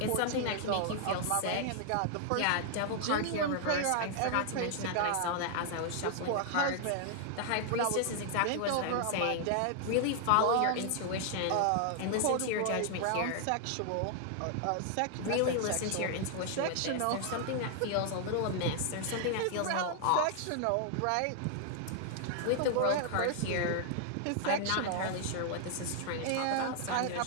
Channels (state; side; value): different; both; correlation 0.00